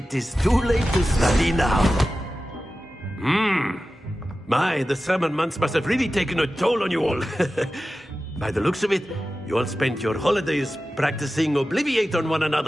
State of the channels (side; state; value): both; normal; correlation 0.94